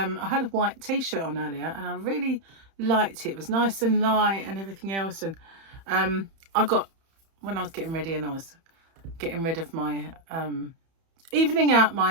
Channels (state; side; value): late; left; 31 ms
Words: had a white t-shirt on earlier, and I really liked it. It was nice and light and everything else. And when I was getting ready and I was getting rid of my evening out